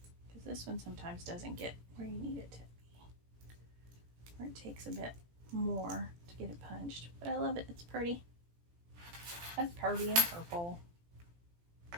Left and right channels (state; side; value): late; left; 17 ms